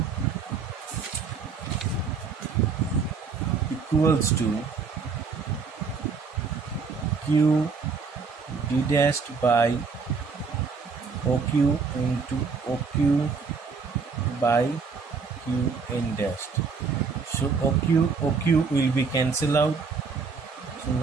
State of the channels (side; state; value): left; quieter; 5.1 dB